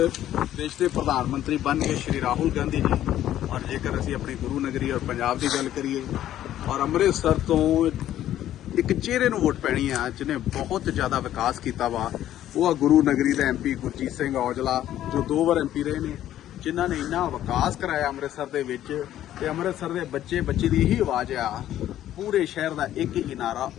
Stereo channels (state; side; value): quieter; right; 12.3 dB